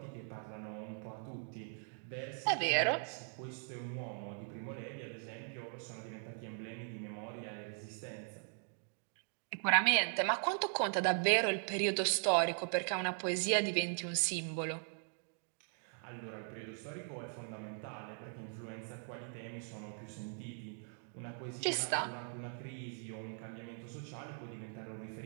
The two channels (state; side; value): silent; left; 51 dB below the other